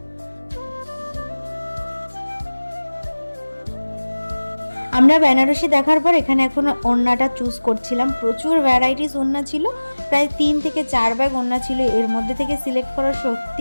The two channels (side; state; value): both; inverted; correlation -1.00